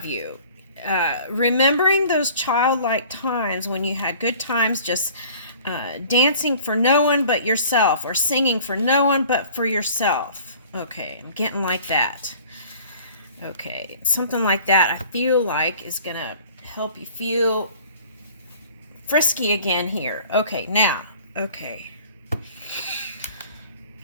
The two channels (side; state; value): both; inverted; correlation -0.49